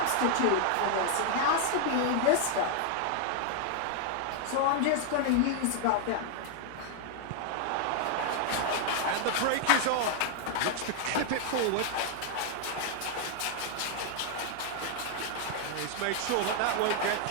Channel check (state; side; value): different; both; correlation 0.00